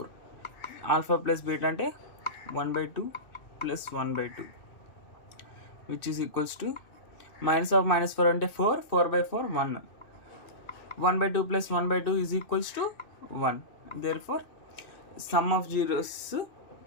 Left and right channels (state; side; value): late; right; 2.6 ms